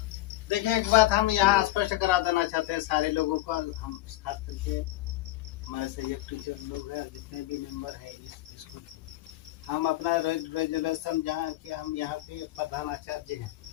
देखिए एक बात हम यहाँ स्पष्ट करा देना चाहते हैं सारे लोगों को, हम खास करके हमारे सहयोग टीचर लोग हैं, जितने भी मेंबर हैं इस स्कूल के, हम अपना रेजुलेशन जहाँ कि हम यहाँ के प्रधान आचार्य हैं,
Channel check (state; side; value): quieter; right; 16.5 dB